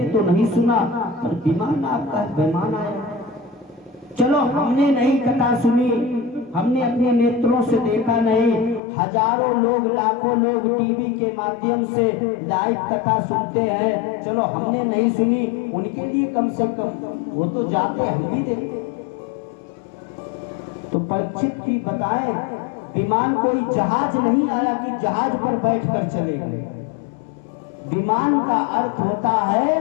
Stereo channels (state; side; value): drops out; right; at 8.8 s